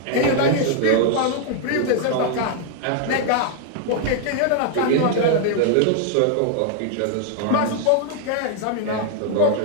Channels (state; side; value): different; both; correlation 0.00